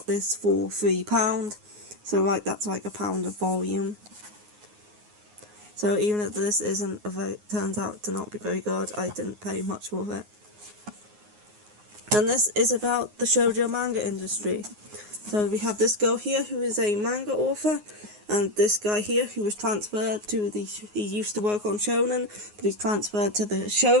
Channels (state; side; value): late; left; 9.6 ms